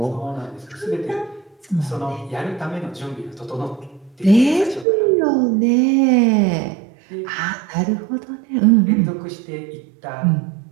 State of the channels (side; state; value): left; drops out; at 4.9 s